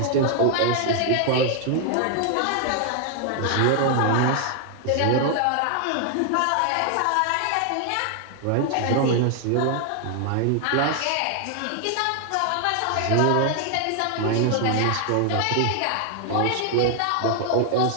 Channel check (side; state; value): both; different; correlation 0.00